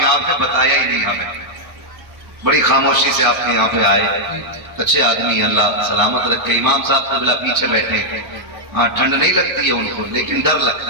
ہیں بتایا ہی نہیں ہمیں، بڑی خاموشی سے آپ کے یہاں پہ آئے، اچھے آدمی، اللہ سلامت رکھے۔ امام صاحب قبلہ پیچھے بیٹھے ہیں، ہاں ٹھنڈ نہیں لگتی ہے ان کو لیکن ڈر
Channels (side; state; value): left; late; 1.0 ms